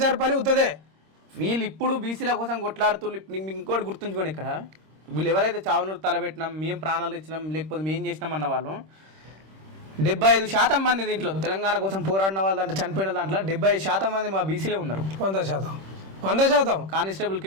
పని ఉత్తదే. వీళ్ళు ఇప్పుడు బీసీల కోసం కొట్లాడుతూ ఇంకోటి గుర్తుంచుకోండి, ఇక్కడ వీళ్ళు ఎవరైతే చావును తలబెట్టినాం, మేము ప్రాణాలు ఇచ్చినాం, లేకపోతే మేము చేసినాం అన్న వాళ్ళు 75% మంది దీంట్లో తెలంగాణ కోసం పోరాడిన వాళ్ళ దాంట్లో చనిపోయిన దాంట్లో 75% మంది మా బీసీలే ఉన్నారు. 100%. కానిస్టేబుల్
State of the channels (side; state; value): left; late; 26 ms